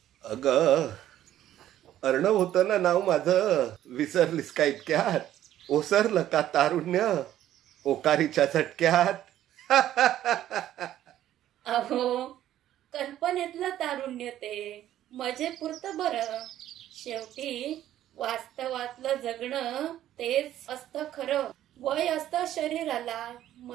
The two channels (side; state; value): left; quieter; 12.4 dB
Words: अगं अर्णव होतं ना नाव माझं, विसरलीस का इतक्यात? ओसरलं का तारुण्य ओकारीच्या झटक्यात? अहो, कल्पनेतलं तारुण्य ते मजेपुरतं बरं. शेवटी वास्तवातलं जगणं तेच असतं खरं. वय असतं शरीराला,